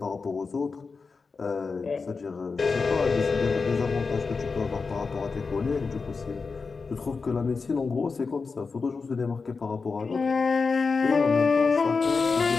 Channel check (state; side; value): quieter; right; 4.6 dB